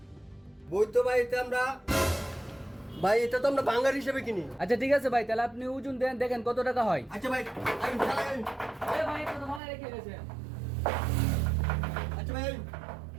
বই তো ভাই এটা আমরা ভাই এটা তো আমরা ভাঙার হিসেবে কিনি। আচ্ছা ঠিক আছে ভাই, তাহলে আপনি ওজন দেন, দেখেন কত টাকা হয়। আচ্ছা ভাই আমি চালাই। এ ভাই এটা তো ভালো রেখে গেছে। আচ্ছা ভাই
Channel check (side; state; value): left; drops out; at 9.6 s